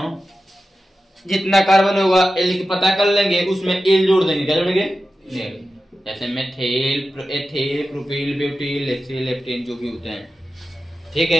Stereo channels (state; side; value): normal; both; correlation 0.93